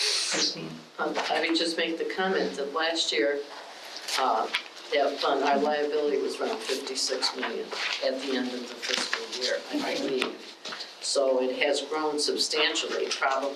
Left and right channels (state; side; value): identical; both; correlation 1.00